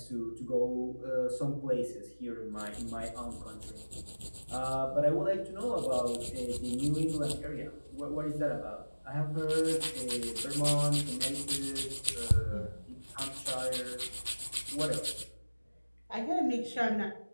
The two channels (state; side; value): inverted; both; correlation -1.00